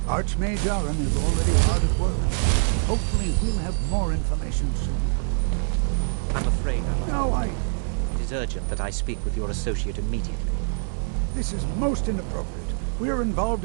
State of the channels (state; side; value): silent; left; 62 dB below the other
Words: Archmage Aron is already hard at work. Hopefully we'll have more information soon. I'm afraid I'm... No, It is urgent that I speak with your associate immediately. This is most inappropriate. We are involved